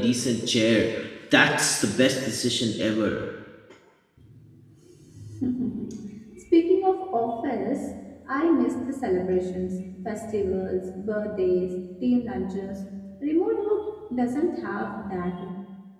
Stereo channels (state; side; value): identical; both; correlation 1.00